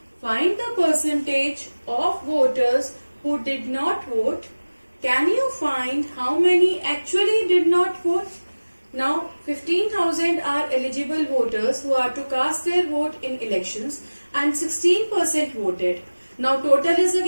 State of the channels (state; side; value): inverted; both; correlation -1.00